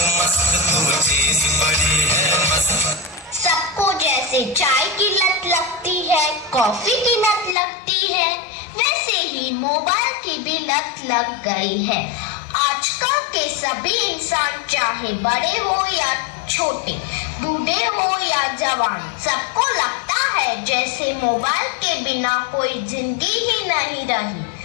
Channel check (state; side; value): drops out; right; at 7.6 s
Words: मस्त, जैसे चाय की लत लगती है, कॉफी की लत लगती है, वैसे ही मोबाइल की भी लत लग गई है। आजकल के सभी इंसान, चाहे बड़े हो या छोटे, बूढ़े हो या जवान, सबको लगता है जैसे मोबाइल के बिना कोई जिंदगी ही नहीं रही।